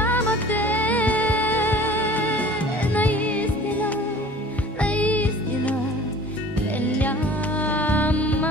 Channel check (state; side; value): normal; both; correlation 0.45